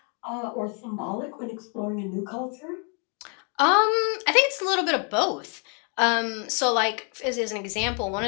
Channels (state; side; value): quieter; right; 38.3 dB